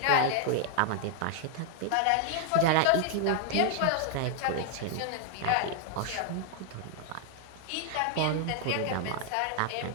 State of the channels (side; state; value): both; different; correlation 0.00